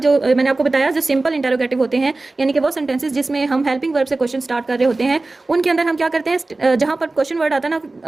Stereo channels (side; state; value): left; quieter; 3.2 dB